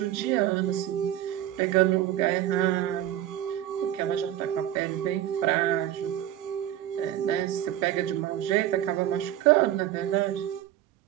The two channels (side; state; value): left; quieter; 12.4 dB